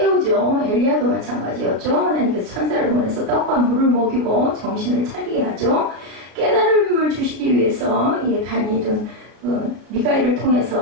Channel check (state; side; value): late; left; 33 ms